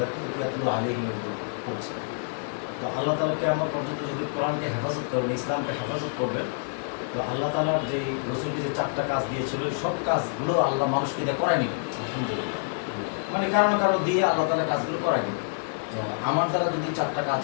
ইয়াতলু আলাইহিম করছেন। তো আল্লাহ তাআলা কিয়ামত পর্যন্ত যদি কোরআনকে হেফাজত করবেন, ইসলামকে হেফাজত করবেন, তো আল্লাহ তাআলার যে রসুলকে যে 4টা কাজ দিয়েছিল সব কাজগুলো আল্লাহ মানুষকে দিয়ে করায় নিবে আলহামদুলিল্লাহ। মানে কারো না কারো দিয়ে আল্লাহ তাআলা কাজগুলো করায় নিবে। তো আমার দ্বারা যদি 4টা কাজ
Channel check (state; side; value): silent; right; digital silence